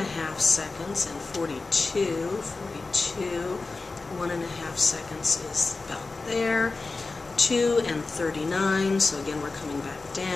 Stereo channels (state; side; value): quieter; right; 3.7 dB